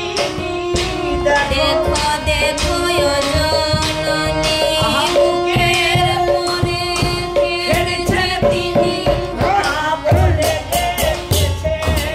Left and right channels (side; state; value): both; identical; correlation 1.00